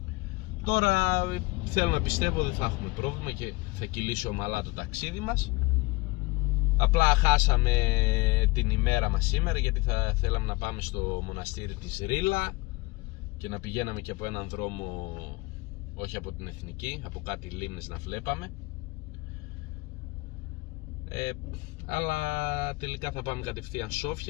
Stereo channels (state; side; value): quieter; right; 23.0 dB